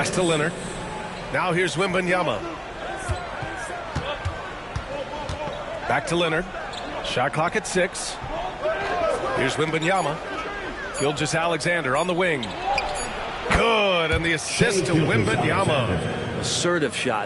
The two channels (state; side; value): identical; both; correlation 1.00